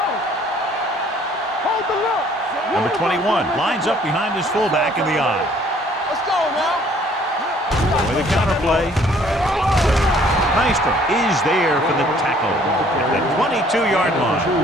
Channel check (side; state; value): both; normal; correlation 0.59